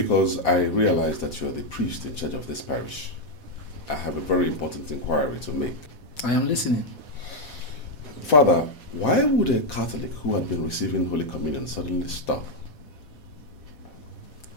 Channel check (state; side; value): late; right; 4.1 ms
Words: I realized that you are the priest in charge of this parish. I have a very important inquiry to make. I am listening. Father, why would a Catholic who had been receiving Holy Communion suddenly stop?